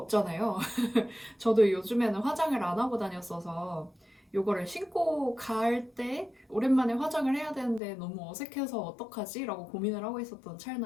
저도 요즘에는 화장을 안 하고 다녔어서 요거를 신고 갈 때 오랜만에 화장을 해야 되는데 너무 어색해서 어떡하지? 라고 고민을 하고 있었던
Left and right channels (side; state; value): right; drops out; at 7.8 s